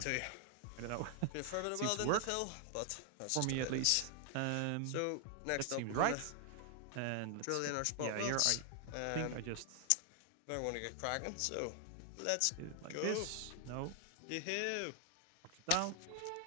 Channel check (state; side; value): different; both; correlation 0.00